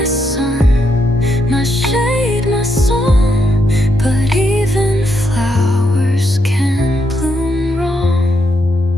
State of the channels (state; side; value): normal; both; correlation 0.79